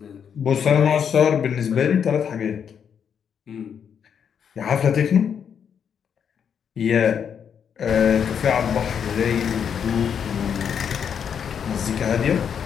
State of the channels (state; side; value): quieter; right; 7.7 dB